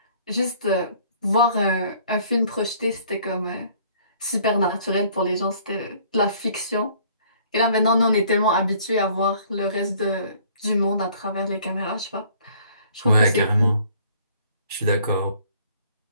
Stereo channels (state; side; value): inverted; both; correlation -0.58